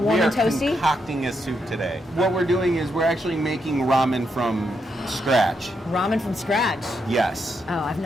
and toasty? We are concocting a soup today. What we're doing is we're actually making ramen from scratch. Ramen from scratch? Yes. Oh, I've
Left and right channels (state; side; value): normal; both; correlation 0.81